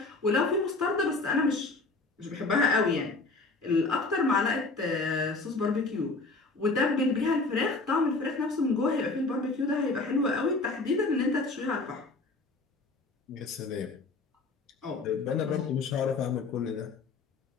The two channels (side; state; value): right; quieter; 3.6 dB